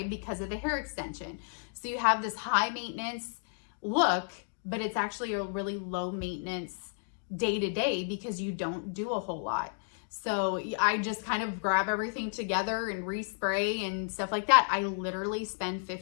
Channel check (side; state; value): right; silent; digital silence